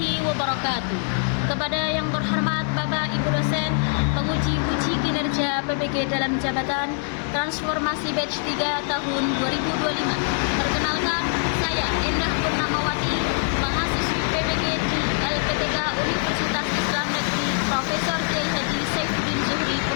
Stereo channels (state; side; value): silent; right; 59 dB below the other